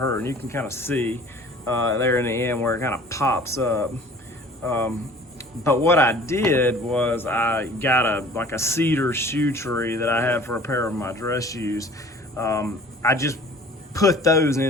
and you can kind of see there in the end where it kind of pops up. But what I did was I got a cedar shoe tree that I have for a pair of my dress shoes. I just put those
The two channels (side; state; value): both; normal; correlation 0.48